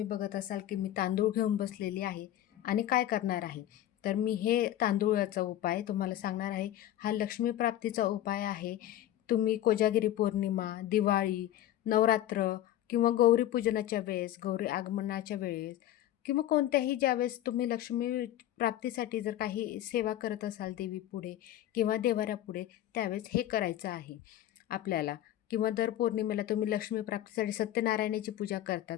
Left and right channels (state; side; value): quieter; right; 12.8 dB